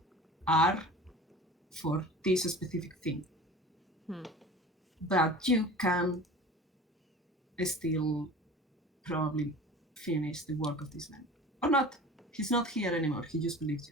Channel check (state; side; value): normal; both; correlation 0.39